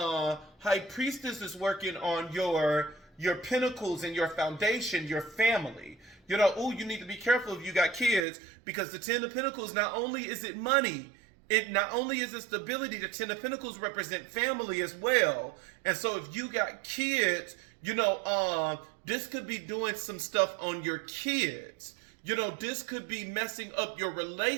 high priestess is working on your pinnacles and your foundation, your family. You need to be careful if you got kids, because the Ten of Pentacles, not only is it money, it not only is it stability, the Ten of Pentacles represent family as well. And so if you got kids, this could be doing some stuff on your kids. This could be messing up your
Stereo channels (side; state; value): left; drops out; at 8.2 s